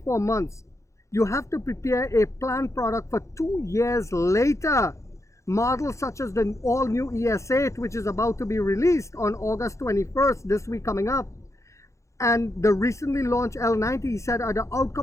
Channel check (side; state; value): right; late; 0.15 ms